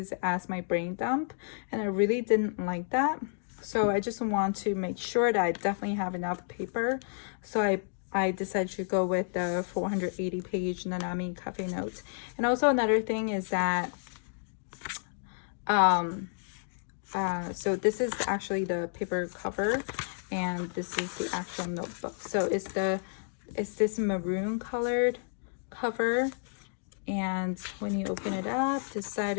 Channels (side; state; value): right; silent; digital silence